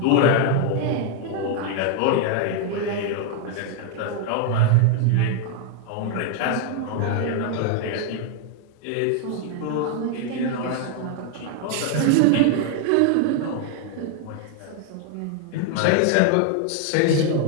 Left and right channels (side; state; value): both; different; correlation 0.00